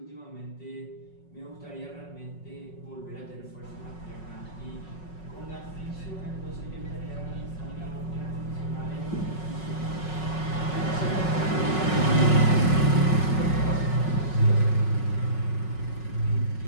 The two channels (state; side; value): late; right; 5.4 ms